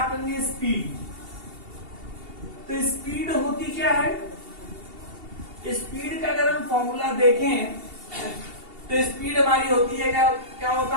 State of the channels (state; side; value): late; left; 2.7 ms